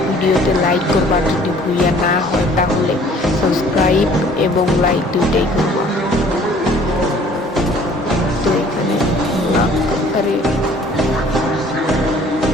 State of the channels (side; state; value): both; normal; correlation 0.54